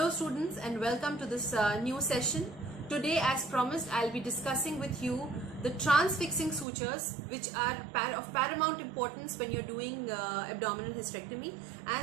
students and welcome to this new session. Today, as promised, I'll be discussing with you the transfixing sutures, which are of paramount importance when you're doing abdominal hysterectomy.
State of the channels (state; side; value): drops out; left; at 6.7 s